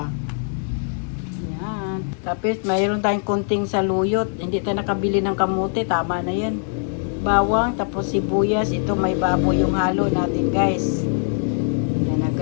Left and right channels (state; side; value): silent; right; digital silence